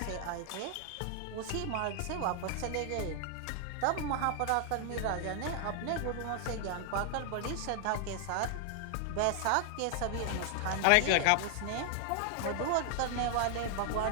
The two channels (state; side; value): different; both; correlation 0.00